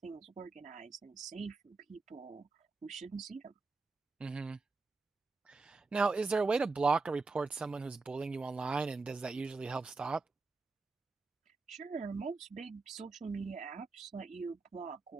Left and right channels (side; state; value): left; quieter; 3.9 dB